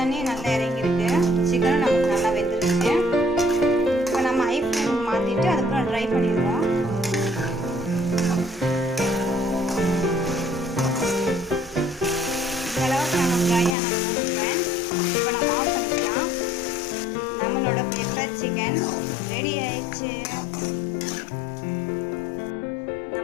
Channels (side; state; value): right; drops out; at 13.8 s